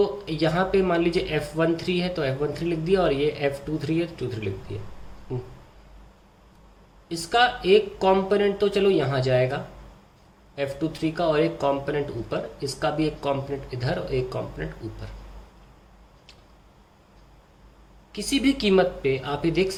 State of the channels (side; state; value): both; identical; correlation 1.00